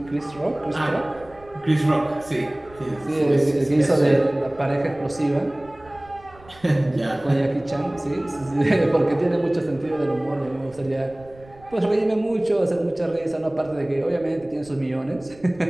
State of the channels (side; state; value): right; noise; rumble, 24 dB below the sound